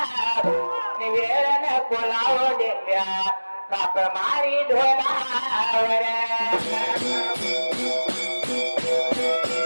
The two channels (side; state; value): both; inverted; correlation -1.00